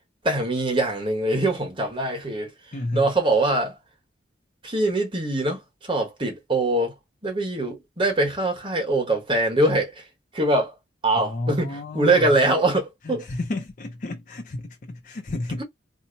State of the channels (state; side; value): normal; both; correlation 0.42